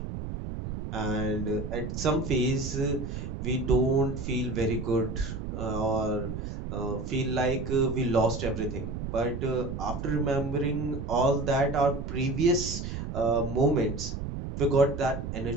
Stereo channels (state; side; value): noise; right; rumble, 6 dB below the sound